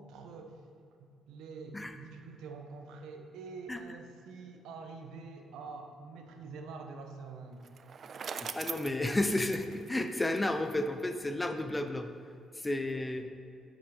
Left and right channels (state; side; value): normal; both; correlation 0.89